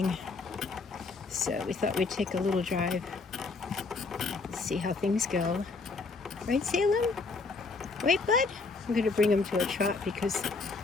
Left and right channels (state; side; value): quieter; right; 4.0 dB